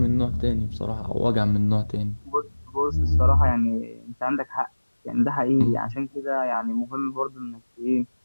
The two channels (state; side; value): inverted; both; correlation -1.00